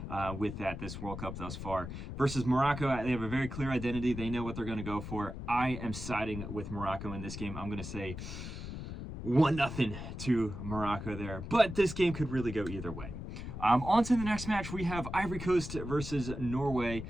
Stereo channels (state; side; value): noise; left; rumble, 8 dB below the sound